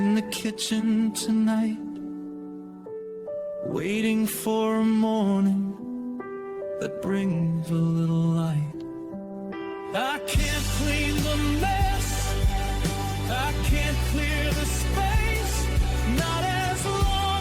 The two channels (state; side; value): identical; both; correlation 1.00